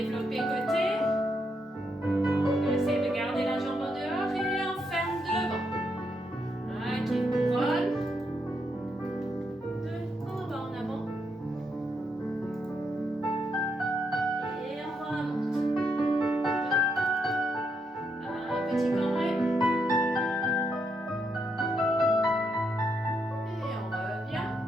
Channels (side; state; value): both; normal; correlation 0.79